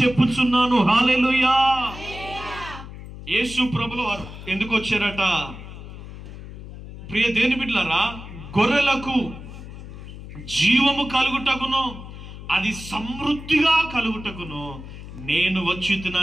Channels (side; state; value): left; noise; hum, 13 dB below the sound